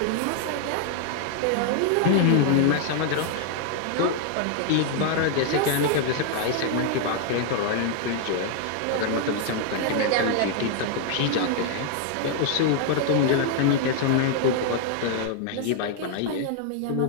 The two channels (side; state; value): both; different; correlation 0.00